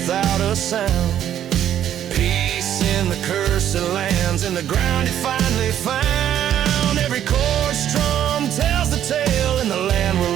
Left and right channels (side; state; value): left; quieter; 10.7 dB